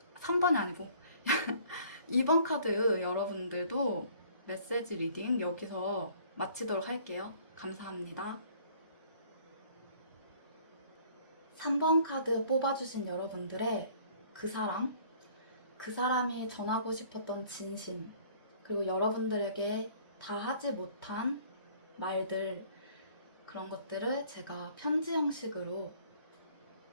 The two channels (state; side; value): inverted; both; correlation -0.56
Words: 아니고 2번 카드 여러분들도 메시지 리딩 여기서 마치도록 할게요. 감사합니다. 3번 카드 뽑아주신 여러분들의 그 사람이 전하고 싶었던 진심, 그리고 여러분들에게 다 하지 못한 말들, 그런 것들을 제가 편지 형식으로